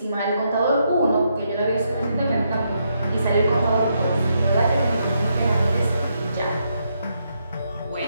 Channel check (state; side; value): inverted; both; correlation -0.78